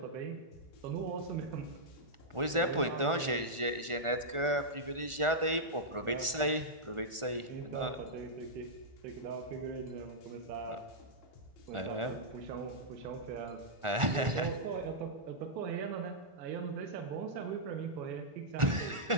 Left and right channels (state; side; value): late; left; 1.4 ms